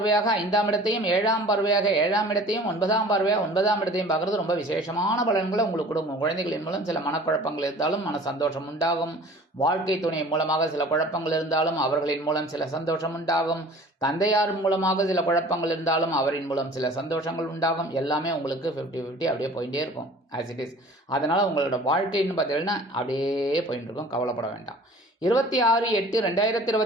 5ஆம் இடத்தையும் 7ஆம் பார்வையாக 7ஆம் இடத்தையும் 9ஆம் பார்வையாக 9ஆம் இடத்தையும் பார்க்கறது ரொம்ப விசேஷமான பலன்களை உங்களுக்கு கொடுக்கும். குழந்தைகளின் மூலம் சில மனக்குழப்பங்கள் இருந்தாலும் மன சந்தோஷம் உண்டாகும். வாழ்க்கை துணை மூலமாக சில குழப்பங்கள் இருந்தாலும் அவர்களின் மூலம் சில சந்தோஷம் உண்டாகும். தந்தையார் மூலமாக சில குழப்பங்கள் இருந்தாலும் அவரின் மூலம் சில சந்தோஷங்கள் உண்டாகும். எல்லாமே உங்களுக்கு 50-50 அப்படியே போயிட்டே இருக்கும் ஆஸ் இட் இஸ். அதனால் உங்களோட வாழ்க்கைன்னு பார்த்தீங்கன்னா அப்படியே போயிட்டு இருக்கும், கவலைப்பட வேண்டாம்.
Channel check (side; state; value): both; normal; correlation 0.46